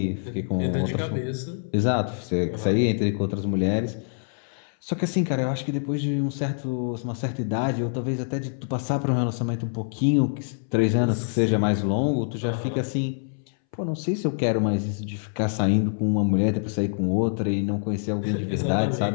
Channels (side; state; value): right; silent; 61 dB below the other